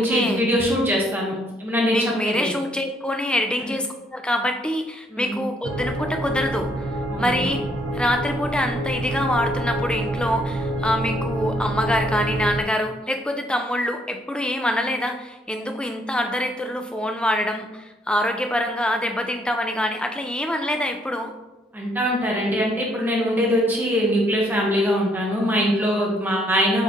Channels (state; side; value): normal; both; correlation 0.69